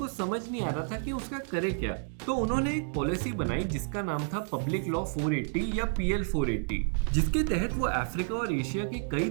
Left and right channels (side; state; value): left; silent; 58 dB below the other